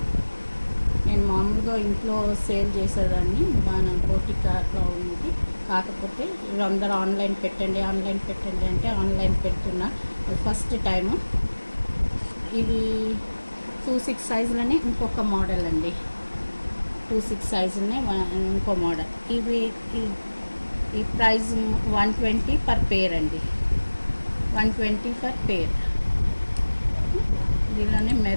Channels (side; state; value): both; inverted; correlation -1.00